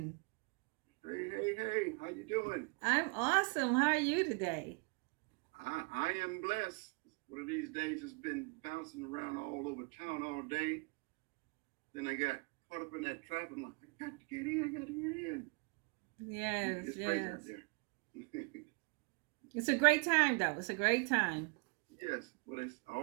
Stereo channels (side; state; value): left; quieter; 32.5 dB